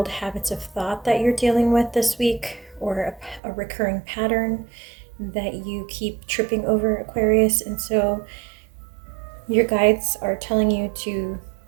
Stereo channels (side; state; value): left; drops out; at 3.4 s